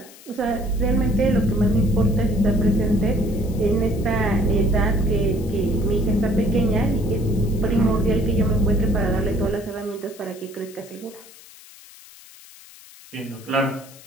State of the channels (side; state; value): left; noise; hiss, 21 dB below the sound